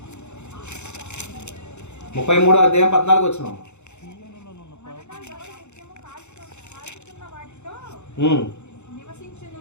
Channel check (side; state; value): right; late; 0.83 ms